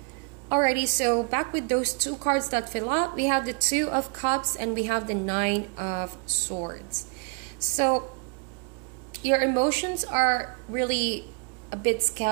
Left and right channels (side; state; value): left; quieter; 36.1 dB